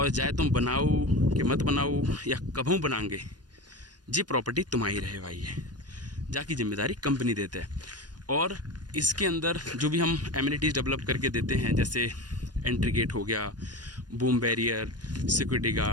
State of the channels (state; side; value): late; left; 0.69 ms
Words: चाहे तुम बनाओ कि मत बनाओ या कभू बनाएंगे, जी प्रॉपर्टी तुम्हारी रहे भाई है, जाकी जिम्मेदारी कंपनी देते हैं। और इसके अंदर जो भी हम एमिनिटीज़ डेवलप करके देते हैं, जैसे एंट्री गेट हो गया, boom barrier, security